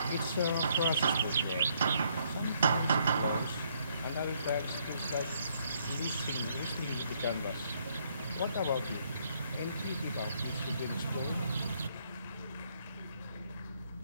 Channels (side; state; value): both; inverted; correlation -0.70